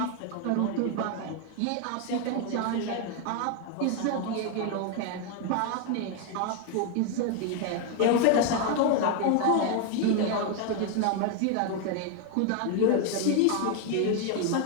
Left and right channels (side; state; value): both; different; correlation 0.01